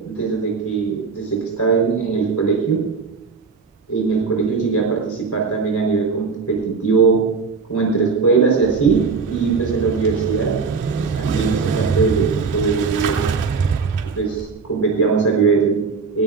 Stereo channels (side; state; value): left; quieter; 4.9 dB